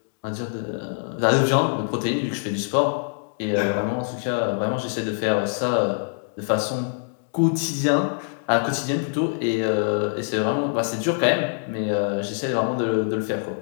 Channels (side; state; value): right; silent; digital silence